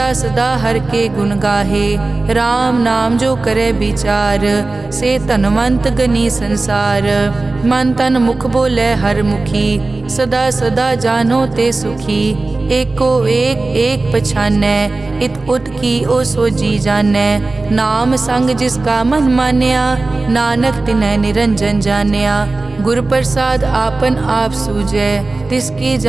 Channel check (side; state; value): left; quieter; 3.3 dB